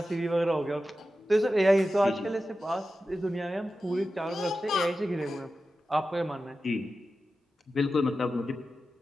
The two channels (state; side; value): normal; both; correlation 0.92